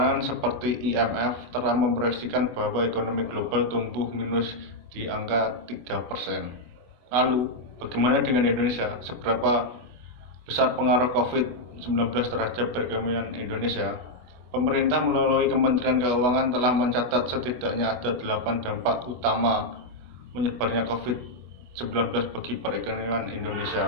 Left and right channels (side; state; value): left; late; 24 ms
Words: seperti IMF telah memproyeksikan bahwa ekonomi global tumbuh minus di angka 3%. Lalu, bagaimana dengan Indonesia? Seberapa besar pengaruh COVID-19 terhadap perekonomian Indonesia? Pemerintah melalui Kementerian Keuangan telah mencatat setidaknya ada 8 dampak utama menyebarnya COVID-19 bagi perekonomian